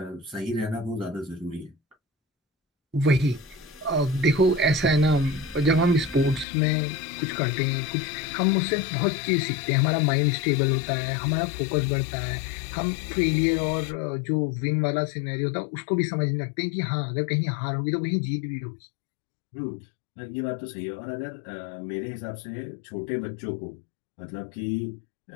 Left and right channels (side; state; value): right; drops out; at 6.5 s